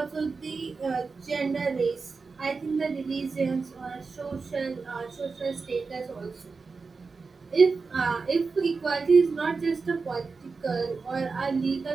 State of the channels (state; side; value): quieter; left; 4.5 dB